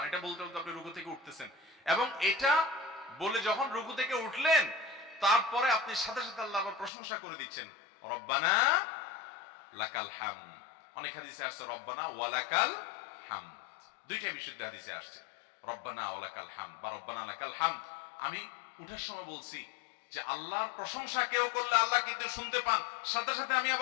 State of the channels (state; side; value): drops out; right; at 6.9 s